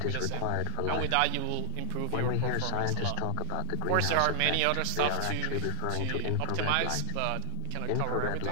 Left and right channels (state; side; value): different; both; correlation 0.00